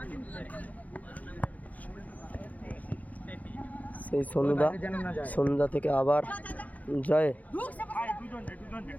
সেই সন্ধ্যা থেকে আবার জয়।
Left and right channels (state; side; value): late; right; 0.076 ms